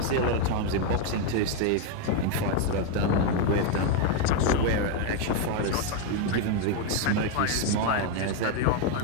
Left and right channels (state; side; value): different; both; correlation 0.01